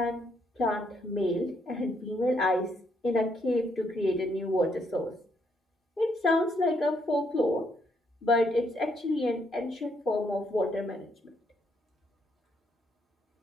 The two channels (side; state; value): both; normal; correlation 0.73